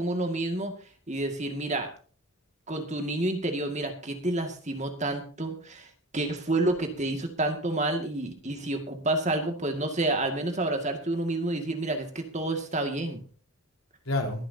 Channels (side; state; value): both; normal; correlation 0.33